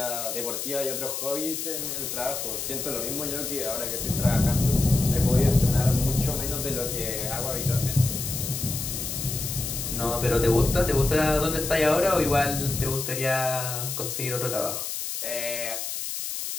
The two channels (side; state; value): left; noise; hiss, 4 dB below the sound